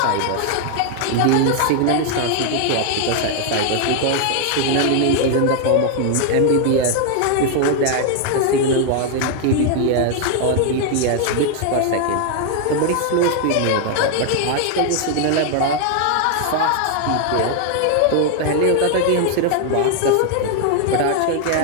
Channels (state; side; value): different; both; correlation 0.00